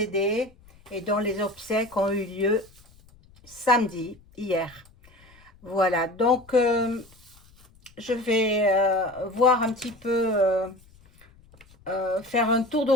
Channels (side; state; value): left; noise; rumble, 27 dB below the sound